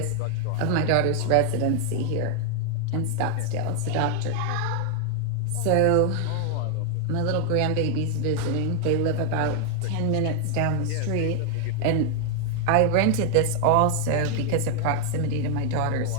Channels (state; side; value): different; both; correlation 0.00